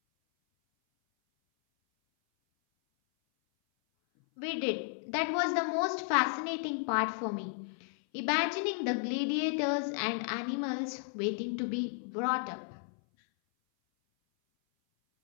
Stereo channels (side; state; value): right; silent; 56 dB below the other